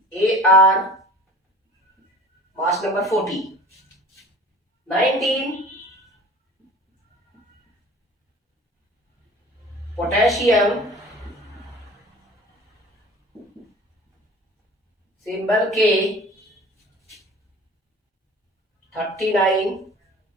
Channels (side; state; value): both; normal; correlation 0.44